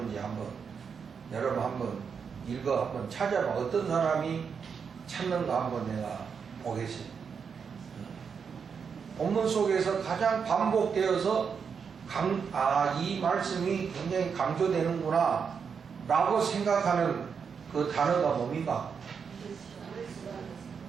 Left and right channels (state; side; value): quieter; left; 6.3 dB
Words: 한번 여러분 한번 한번 찾아봐. 어떤 사람이 찾는가 한번 내가 보겠습니다. 본문 속에서 가장 반복되어서 이 말씀이 굉장히 강조되는구나 라고 생각하는 그 단어가 뭡니까?